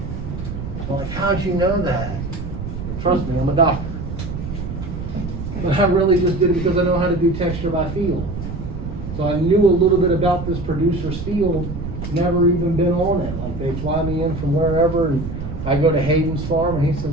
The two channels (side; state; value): right; noise; rumble, 7 dB below the sound